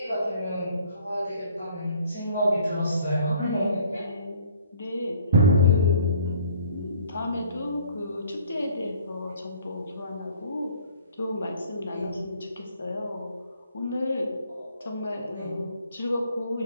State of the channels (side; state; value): both; inverted; correlation -0.56